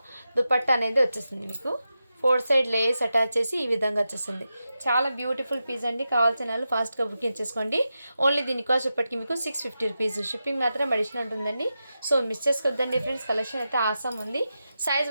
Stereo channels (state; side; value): inverted; both; correlation -0.90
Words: దుపట్టా అనేది వచ్చేస్తుంది మీకు. 4 సైడ్ లేస్ అటాచ్ చేసి ఈ విధంగా వచ్చేస్తుంది. చాలా బ్యూటిఫుల్ పీస్ అండి. కావాల్సిన వాళ్ళు ఫాస్ట్గా బుకింగ్ చేసుకోండి. ఓన్లీ దీని కాస్ట్ ఇప్పటికి మీకు 650 రూపీస్. షిప్పింగ్ మాత్రం అడిషనల్ ఉంటుందండి. సో మిస్ చేసుకోవద్దండి ఫ్రెండ్స్, కలెక్షన్ అయితే ఆసమ్ ఉంది. సైజ్